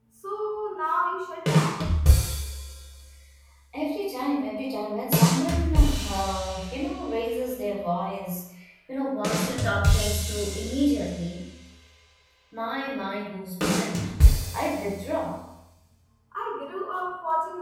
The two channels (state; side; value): identical; both; correlation 1.00